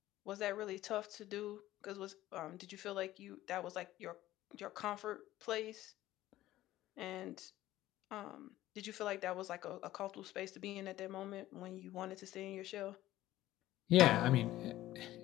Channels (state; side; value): quieter; right; 15.1 dB